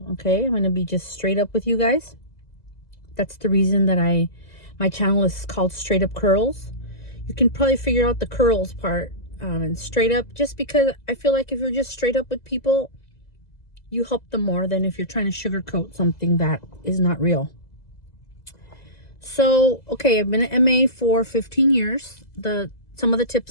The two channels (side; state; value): right; late; 2.0 ms